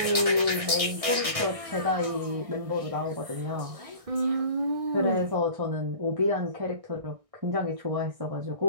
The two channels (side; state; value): left; late; 1.6 ms